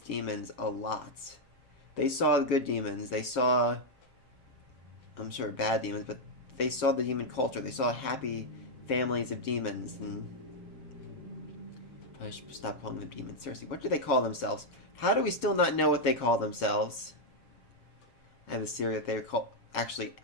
demons a lot. They saw good demons. They saw... I'm sure bad demons, but they saw the demon culture. They saw happy families of demons, and I should stop calling them demons. Seriously, what do they call themselves? How do we still not know what they call themselves? I have a theory that they're called actually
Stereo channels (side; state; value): right; late; 7.5 ms